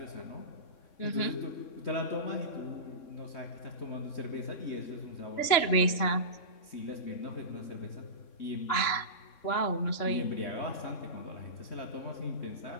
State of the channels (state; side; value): late; right; 3.6 ms